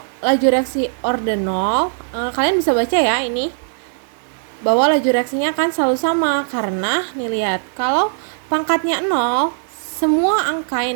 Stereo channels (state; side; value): silent; left; digital silence